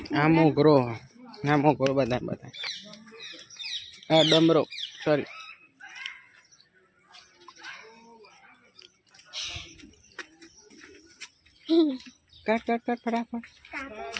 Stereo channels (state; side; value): identical; both; correlation 1.00